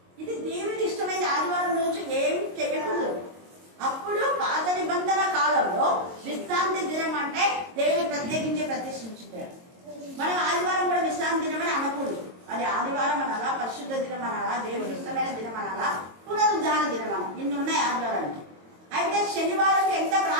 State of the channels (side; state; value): left; late; 22 ms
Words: ఇది దేవునికి ఇష్టమైన ఆదివారం రోజు ఏం చేయకూడదు. అప్పుడు పాత నిబంధన కాలంలో విశ్రాంతి దినం అంటే దేవుడు ప్రత్యేకించి ప్రతిష్ఠించాడు. మనం ఆదివారం కూడా విశ్రాంతి దినం అని అనకూడదు. అది ఆదివారం అనాలా, పరిశుద్ధ దినం అనాలా, దేవుడికి ఇష్టమైన దినం అనాలా, పునరుద్ధాన దినం అనాలి. ఇన్ని ఉన్నాయి ఆదివారానికి. అయితే శనివారం ఎంత